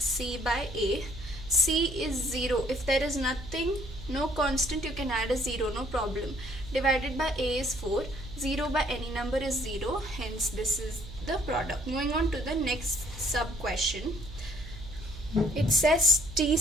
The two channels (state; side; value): noise; right; hum, 13 dB below the sound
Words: by a. C is 0. If there is nothing, no constant, you can add a 0, no problem. Divided by a is 4. 0 by any number is 0, hence this is the product. Moving on to the next sub question. It says t